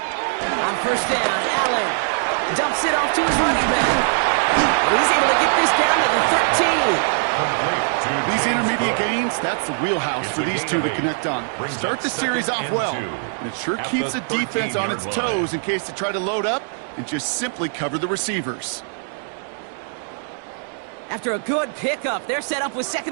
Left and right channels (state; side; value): silent; left; digital silence